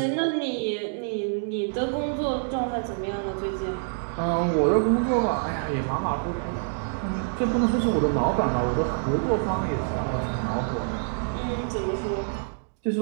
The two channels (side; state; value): left; silent; digital silence